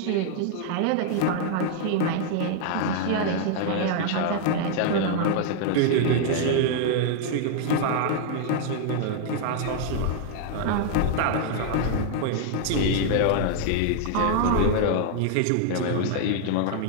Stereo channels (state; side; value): different; both; correlation 0.00